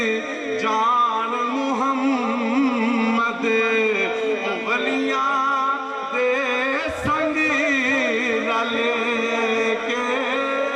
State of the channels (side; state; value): both; identical; correlation 1.00